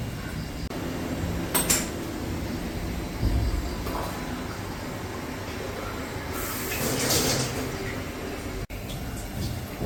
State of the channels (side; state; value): both; identical; correlation 1.00